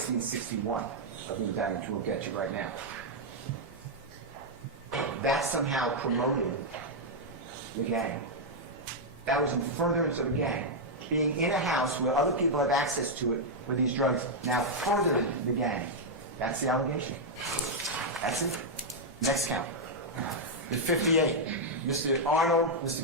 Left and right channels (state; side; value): normal; both; correlation -0.03